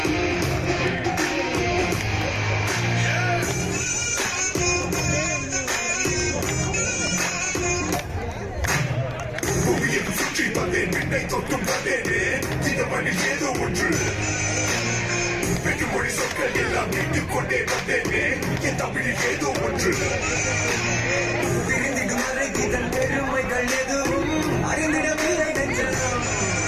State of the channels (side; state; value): both; identical; correlation 1.00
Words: தொட்டும் வந்தேனே இந்த மண்ணில் ஏதோ ஒன்று வெற்றுமொழி சொற்கள் எல்லாம் மீட்டுக் கொண்டே வந்தேனே என் தமிழில் ஏதோ ஒன்று பிரிந்து மறைக்கிதன் பெருமைகள் எதுவும் அறிந்திடவில்லை நெஞ்சம்.